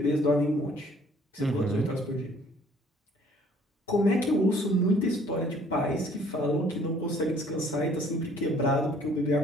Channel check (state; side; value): normal; both; correlation 0.58